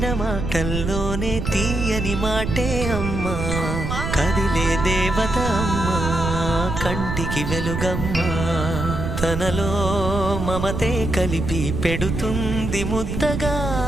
మాటల్లోనే తీయని మాటే అమ్మా, కదిలే దేవత అమ్మా, కంటికి వెలుగమ్మా. తనలో మమతే కలిపి పెడుతుంది ముద్దగా,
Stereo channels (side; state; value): right; noise; rumble, 3 dB below the sound